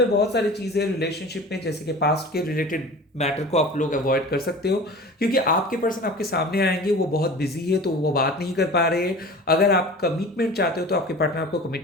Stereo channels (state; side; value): normal; both; correlation 0.38